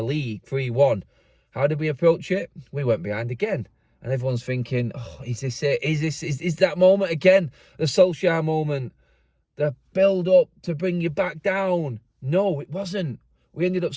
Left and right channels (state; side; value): identical; both; correlation 1.00